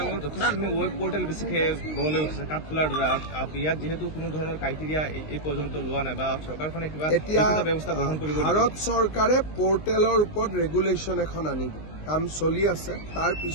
আংলঙত যথেষ্টখিনি ৱেব পৰ্টেল বেছিকৈ গঢ়লৈ উঠিছে কাঠফুলাৰ দ্বাৰা। ইয়াত যিহেতু কোনো ধৰণৰ ক্ৰাইটেৰিয়া এই পৰ্যন্ত লোৱা নাই বা চৰকাৰখনে কিবা ব্যৱস্থা গ্ৰহণ কৰিব। ভাৰত চৰকাৰে পৰ্টেলৰ ওপৰত ৰেগুলেশ্যন এখন আনিব, কাম চলি আছে। তাৰ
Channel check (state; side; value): late; right; 19 ms